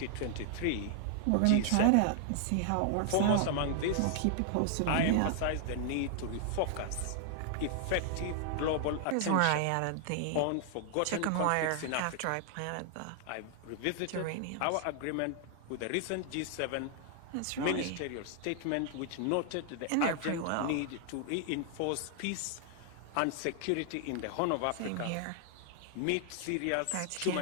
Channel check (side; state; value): both; different; correlation 0.00